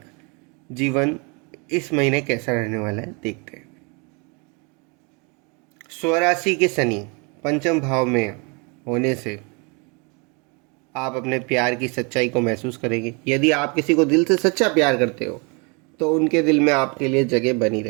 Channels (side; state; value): left; quieter; 32.0 dB